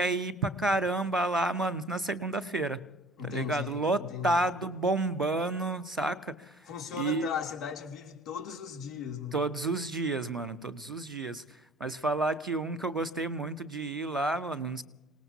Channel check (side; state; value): both; normal; correlation 0.49